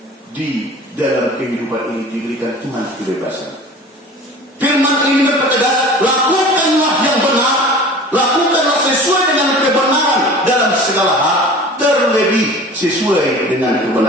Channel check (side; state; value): both; normal; correlation 0.41